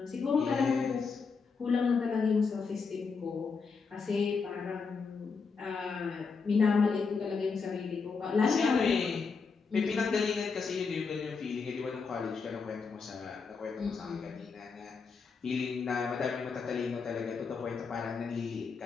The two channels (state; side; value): quieter; right; 5.1 dB